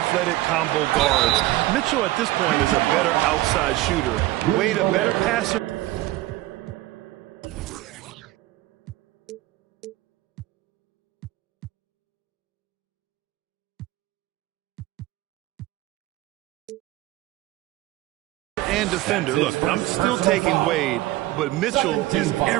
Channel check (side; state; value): left; quieter; 17.3 dB